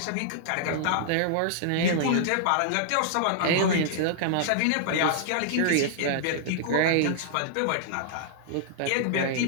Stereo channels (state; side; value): different; both; correlation -0.01